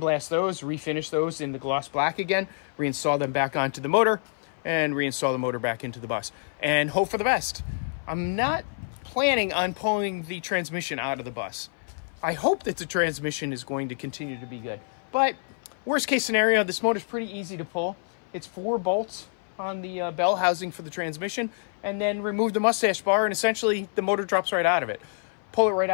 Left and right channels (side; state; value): right; silent; 57 dB below the other